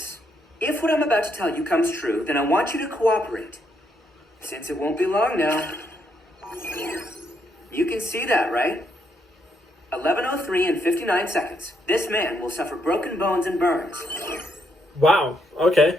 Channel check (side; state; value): both; normal; correlation 0.76